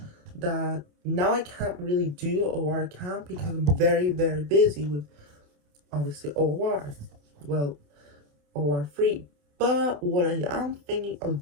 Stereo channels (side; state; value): left; late; 28 ms